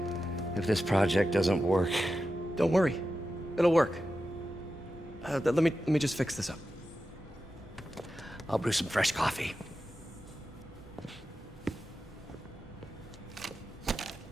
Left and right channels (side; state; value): both; normal; correlation 0.91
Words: If this project doesn't work... Don't worry. It'll work. Let me just fix this up. I'll brew some fresh coffee.